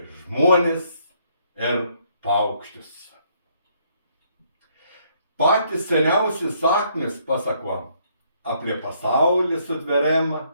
žmones ir paukščius. Patys seniausi sakmės pasako apie pasaulį sutveriamą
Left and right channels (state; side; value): inverted; both; correlation -0.68